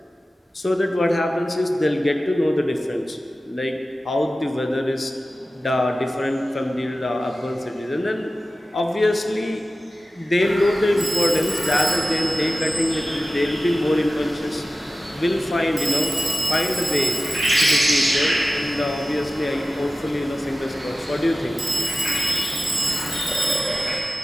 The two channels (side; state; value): both; normal; correlation 0.94